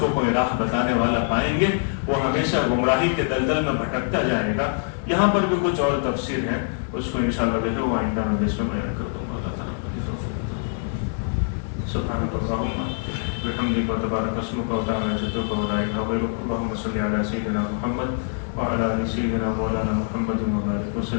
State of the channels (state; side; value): silent; right; digital silence